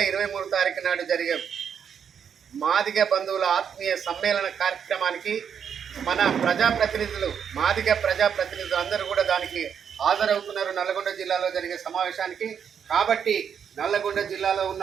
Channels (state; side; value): quieter; left; 7.7 dB